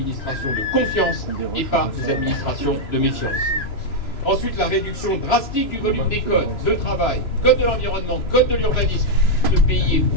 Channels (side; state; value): right; late; 3.0 ms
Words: de confiance et pas des administrations de méfiance. Ensuite, la réduction drastique du volume des codes de travail, code de l'environnement, code de l'urbanisme. Ce pays est